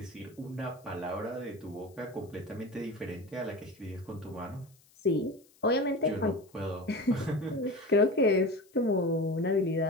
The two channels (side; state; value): left; noise; hiss, 30 dB below the sound